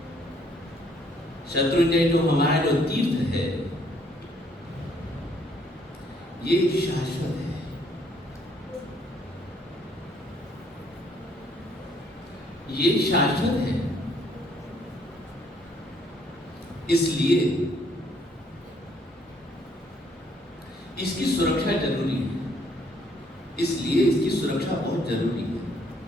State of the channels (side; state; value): both; normal; correlation 0.66